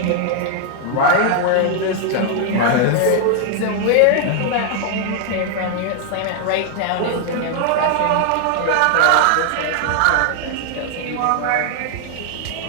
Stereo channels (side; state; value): both; different; correlation 0.00